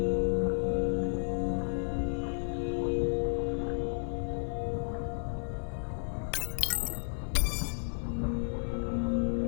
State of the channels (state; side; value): silent; right; 56 dB below the other